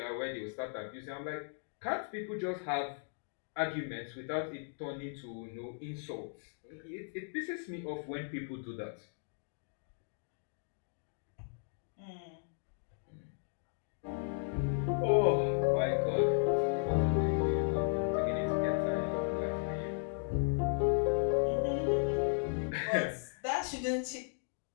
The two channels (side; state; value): right; silent; digital silence